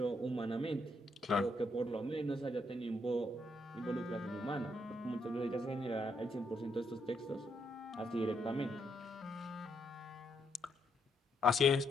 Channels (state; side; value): normal; both; correlation 0.76